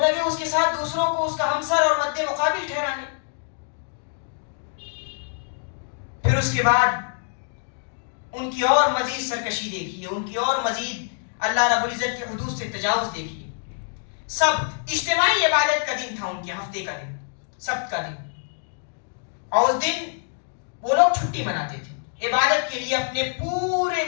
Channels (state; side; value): silent; right; 62 dB below the other